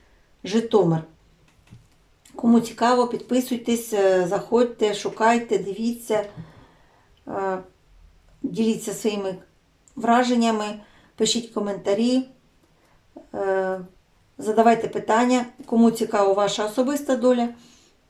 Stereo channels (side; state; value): both; identical; correlation 1.00